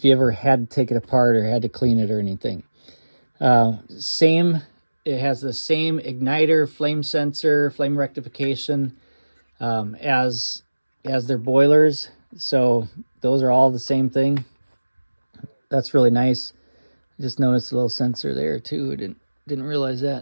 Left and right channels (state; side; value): inverted; both; correlation -1.00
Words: you ever had to take it apart or had to clean it or anything. It has the same igniter, flame sensor, flame rectification as their boilers. So those are all the same thing. That's really nice. Just noticed a little sensor there too. Didn't realize that.